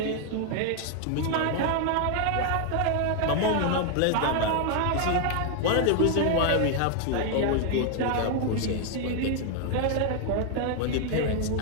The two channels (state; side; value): different; both; correlation 0.00